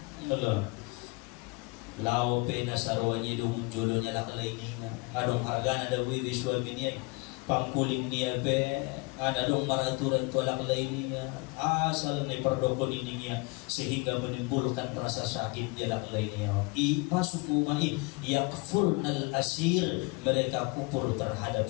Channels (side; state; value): right; quieter; 27.2 dB